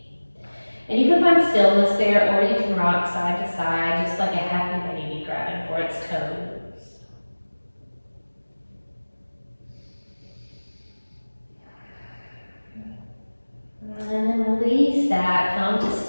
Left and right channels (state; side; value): inverted; both; correlation -1.00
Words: And you can find stillness there, or you can rock side to side, just like a happy baby grabbing for its toes. And then release that, come to